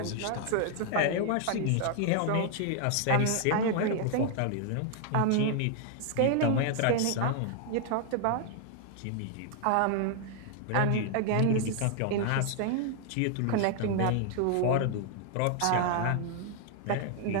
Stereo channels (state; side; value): different; both; correlation 0.00